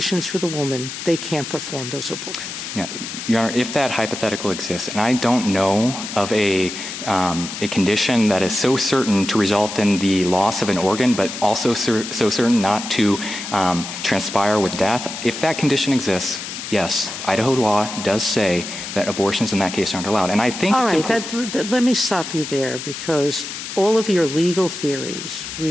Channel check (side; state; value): left; noise; hiss, 8 dB below the sound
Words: for the woman, they can't perform those abortions. Yeah, Your Honor, if that hypothetical exists, and I don't know of a condition that is so certain to result in the loss of an organ, but also so certain not to transpire with death, if that condition exists, yes, Idaho law does say that abortions in that case aren't allowed. And I think— All right, let me stop you there, because all of your legal theories